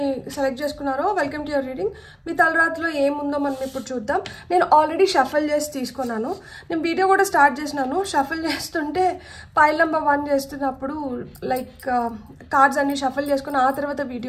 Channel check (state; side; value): identical; both; correlation 1.00